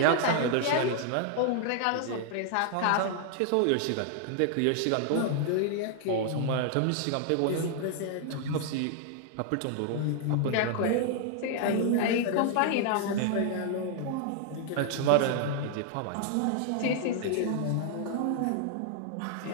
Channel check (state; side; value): different; both; correlation 0.00